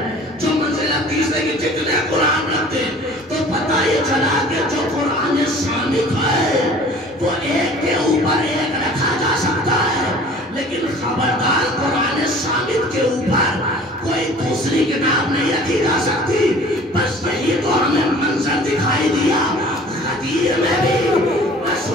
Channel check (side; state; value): both; normal; correlation 0.47